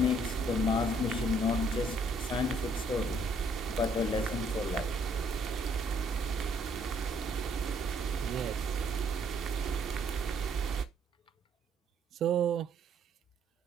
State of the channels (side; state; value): both; normal; correlation 0.66